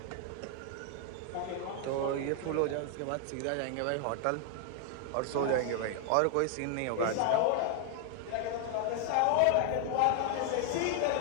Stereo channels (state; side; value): different; both; correlation 0.00